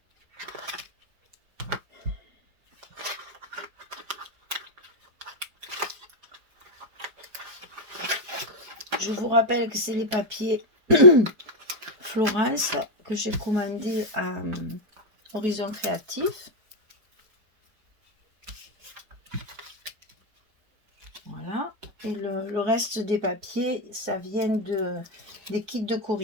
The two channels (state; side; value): late; left; 4.6 ms